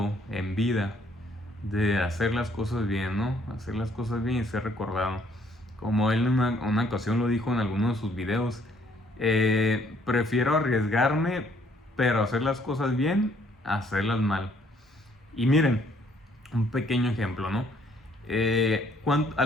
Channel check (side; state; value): both; normal; correlation 0.64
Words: en vida, de hacer las cosas bien, ¿no? Hacer las cosas bien y ser recordado. Como él en una ocasión lo dijo en alguno de sus videos, prefiero arriesgarme, pero hacer las cosas bien, a hacerlas mal. Y miren, un pequeño ejemplo, ¿no? A